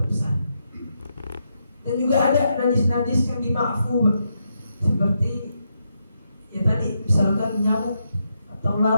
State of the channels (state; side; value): inverted; both; correlation -0.82